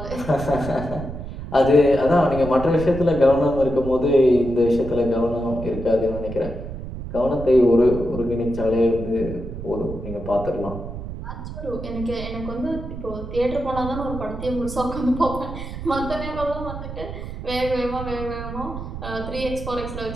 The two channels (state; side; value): noise; right; rumble, 9 dB below the sound